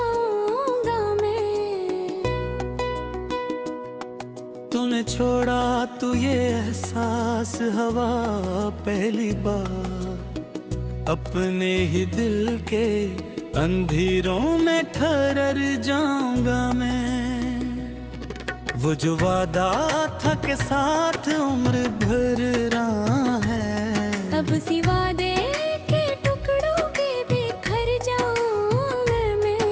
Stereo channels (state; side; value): identical; both; correlation 1.00